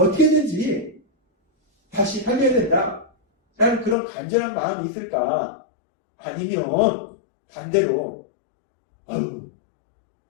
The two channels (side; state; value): right; drops out; at 4.0 s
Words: 다시 살려야 된다 라는 그런 간절한 마음이 있을까? 아니면 반대로